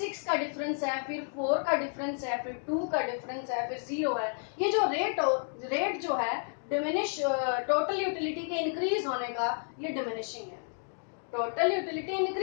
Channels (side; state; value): right; silent; 56 dB below the other